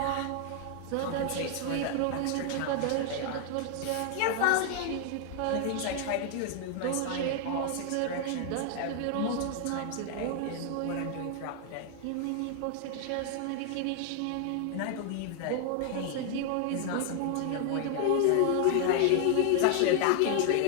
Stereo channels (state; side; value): different; both; correlation 0.00